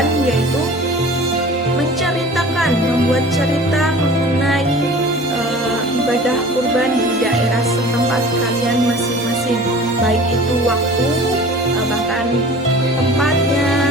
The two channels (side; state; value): both; normal; correlation 0.43